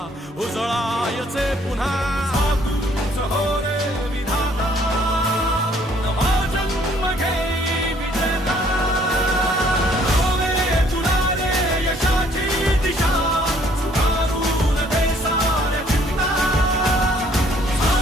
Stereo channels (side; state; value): both; normal; correlation 0.62